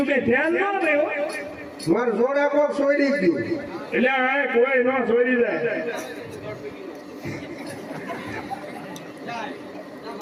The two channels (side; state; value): both; identical; correlation 1.00